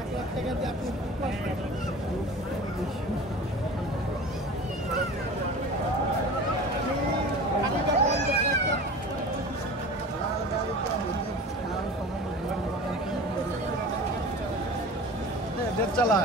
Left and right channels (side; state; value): both; normal; correlation 0.37